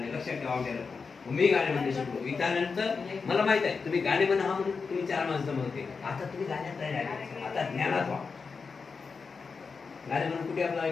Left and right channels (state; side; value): quieter; right; 5.0 dB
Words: लक्षात ठेवा. मी गाणे म्हणणे शिकलो. त्यानंतर मला माहित आहे तुम्ही गाणे म्हणा हा म्हणून तुम्ही 4 माणसं म्हणते. आता तुम्ही गाण्यात नाही राहिले, आता ज्ञानात व्हा. गाणे म्हणून कुठे आपला